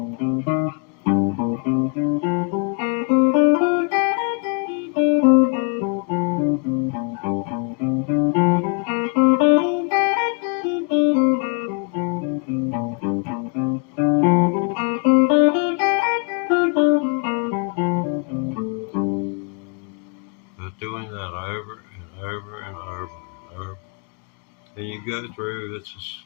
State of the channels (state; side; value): quieter; right; 35.8 dB